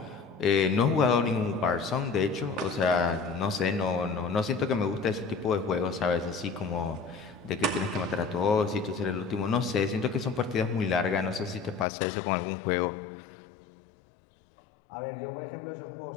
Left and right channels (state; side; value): drops out; right; at 11.9 s